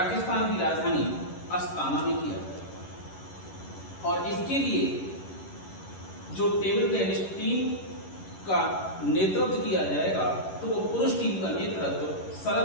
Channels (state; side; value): late; right; 11 ms